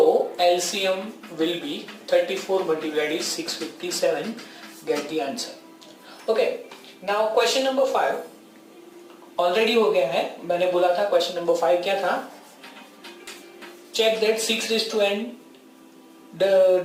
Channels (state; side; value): identical; both; correlation 1.00